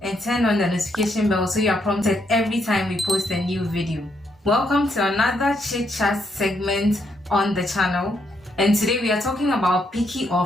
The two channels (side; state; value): both; normal; correlation 0.76